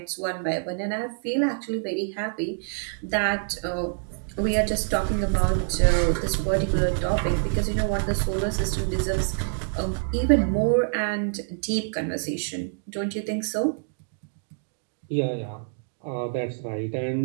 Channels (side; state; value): left; silent; digital silence